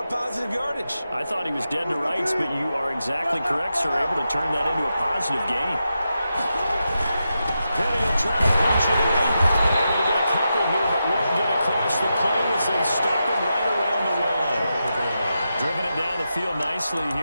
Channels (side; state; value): both; inverted; correlation -0.88